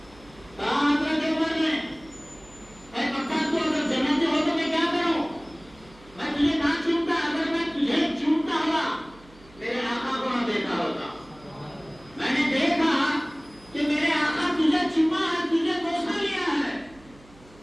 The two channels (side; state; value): right; noise; hum, 25 dB below the sound